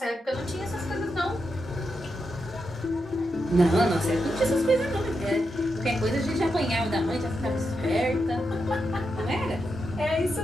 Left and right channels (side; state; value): both; normal; correlation 0.86